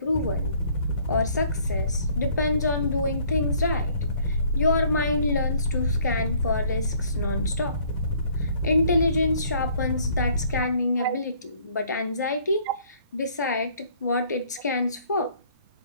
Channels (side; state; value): both; inverted; correlation -0.59